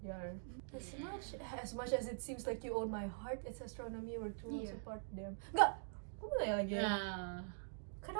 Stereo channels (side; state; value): left; silent; digital silence